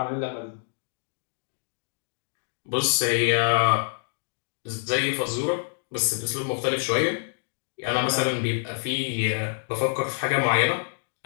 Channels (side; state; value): right; silent; digital silence